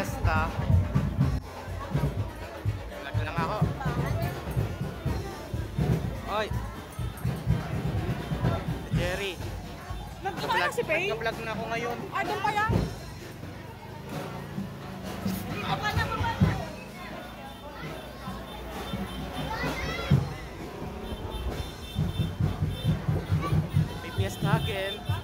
Vlog lang ako. Oy. Jerry. Nagkakala si Faye? Nagka-vlog na ako ngayon. Ah, doon pa yan? May fiesta again.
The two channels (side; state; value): both; identical; correlation 1.00